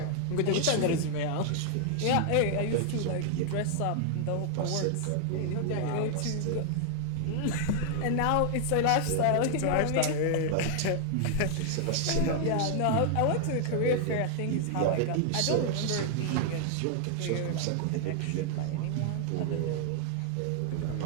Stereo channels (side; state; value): both; different; correlation 0.00